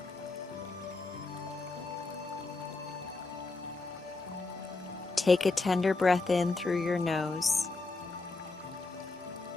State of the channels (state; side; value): quieter; right; 3.6 dB